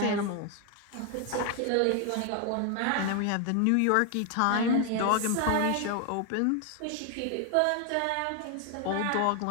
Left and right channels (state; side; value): different; both; correlation 0.01